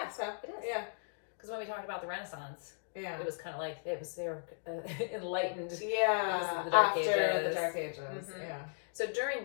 so. It is. Yeah. Because when we talked about the Renaissance, it was kind of like they were enlightened. Yeah. Because of the Dark Ages. After the Dark Ages. Yeah. So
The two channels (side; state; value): right; silent; digital silence